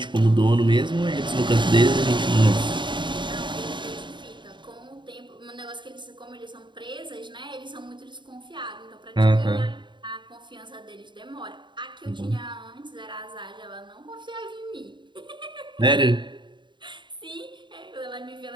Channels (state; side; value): late; left; 0.23 ms